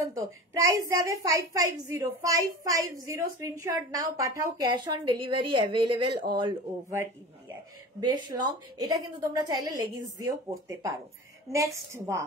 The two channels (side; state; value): both; normal; correlation 0.34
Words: প্রাইস যাবে 550। স্ক্রিনশট নাও, পাঠাও, cash on delivery available all over ইন্ডিয়ায়। বেশ লং, এটা কিন্তু তোমরা চাইলে লেগিংস দিয়েও পরতে পারো। নেক্সট,